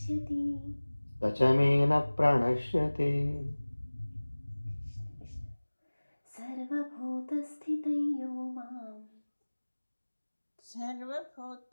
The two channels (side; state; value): both; inverted; correlation -1.00